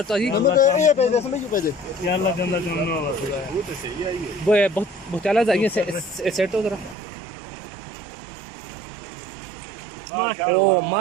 जी ये पैसे समझ क्यों पैसे या अल्लाह गंदा काम ना हो वो बहुत बहुत चला जाइए सेट हो जरा ओ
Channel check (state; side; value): drops out; left; at 7.0 s